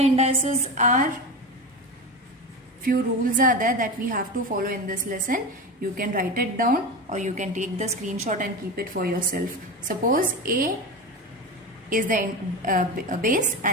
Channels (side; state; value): both; normal; correlation 0.24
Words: are, few rules are there that we have to follow in this lesson. You can write it down or you can take the screenshot and keep it for yourself. Suppose A is the base